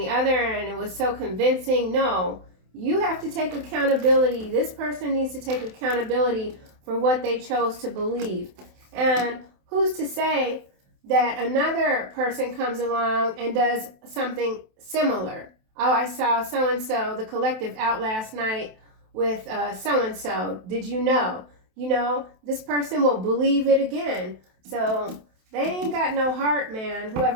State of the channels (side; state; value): left; late; 27 ms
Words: other, and it was so convincing. No, you have to take accountability. This person needs to take accountability for what they chose to believe. And who's to say that another person comes along and does something similar? Oh, I saw so-and-so, the collective, out last night with so-and-so. Did you know? You know, this person will believe it again. So they ain't got no heart, man.